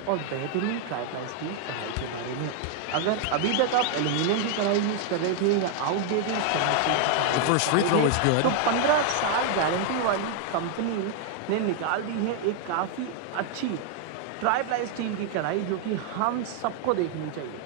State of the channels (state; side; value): different; both; correlation 0.00